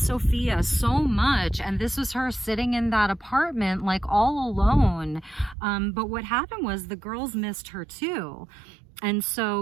so much. And this was her sitting in that apartment like all alone. But what happened was the girls missed her too. And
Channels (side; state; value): left; drops out; at 5.6 s